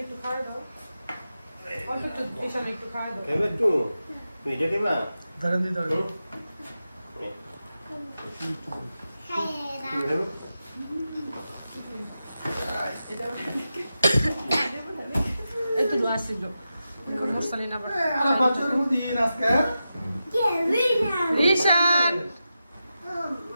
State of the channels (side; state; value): both; inverted; correlation -0.91